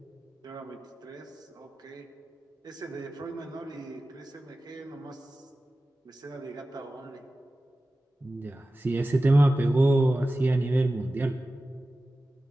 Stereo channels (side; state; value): both; normal; correlation 0.95